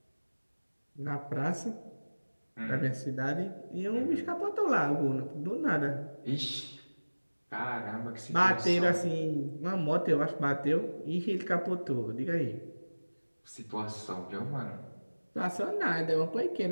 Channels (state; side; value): inverted; both; correlation -1.00